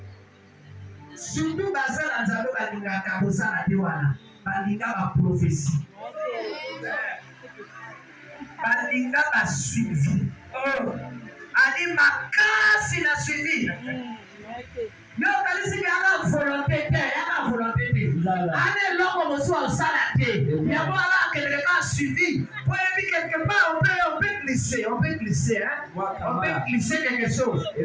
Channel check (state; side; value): identical; both; correlation 1.00